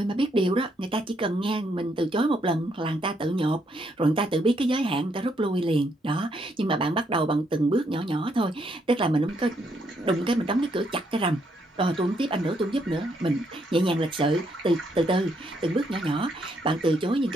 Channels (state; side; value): normal; both; correlation 0.74